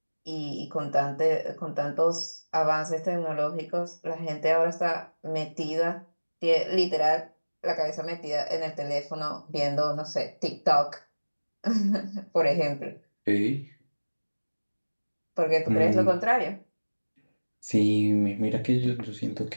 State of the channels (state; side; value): inverted; both; correlation -1.00